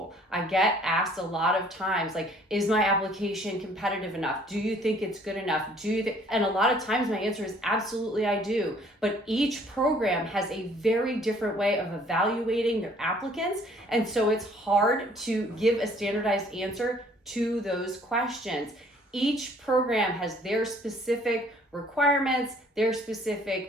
I get asked a lot of times, like, is my application competitive enough? Do you think it's good enough? And a lot of times my answer is absolutely I do. But each program has a very different way of evaluating their applicants. And so it's hard to give a standardized answer to those questions. Each program has their specific requirements, their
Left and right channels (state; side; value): normal; both; correlation 0.58